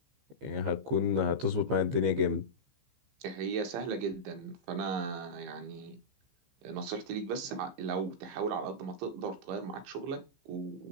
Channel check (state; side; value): late; left; 15 ms